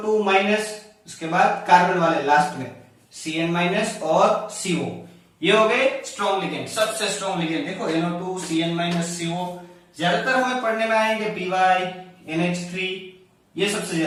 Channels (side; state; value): both; identical; correlation 1.00